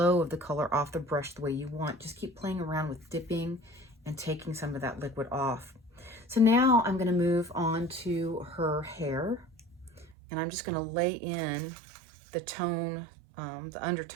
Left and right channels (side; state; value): left; drops out; at 10.2 s